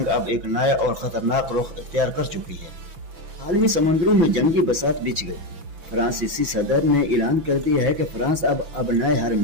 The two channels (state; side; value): late; left; 6.0 ms